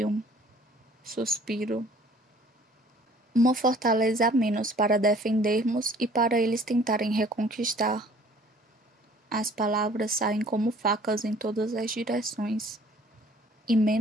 Suspiro. Uma fortaleza a menos para defendermos e para eles tentarem reconquistar. As palavras saem como facas em todas as direções. E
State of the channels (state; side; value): normal; both; correlation 0.54